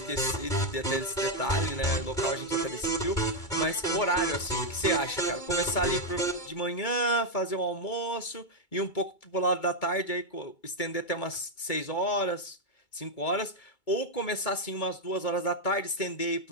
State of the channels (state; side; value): late; right; 2.2 ms